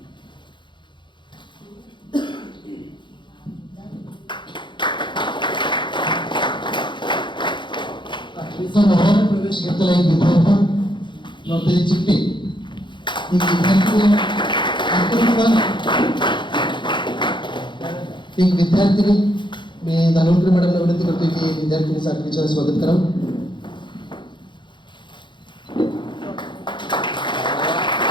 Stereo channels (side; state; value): right; late; 0.23 ms